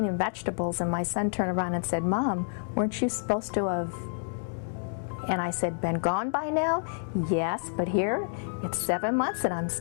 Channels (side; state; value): right; silent; 59 dB below the other